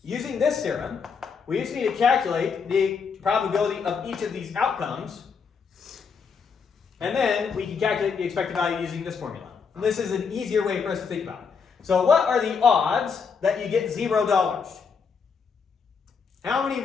using this theorem, we just need to calculate the probability of each of these outcomes, and then we can calculate the expected value using this formula. And this is an easier way for us to think about it. So what are the odds that you get $0? How many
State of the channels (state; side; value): quieter; right; 5.8 dB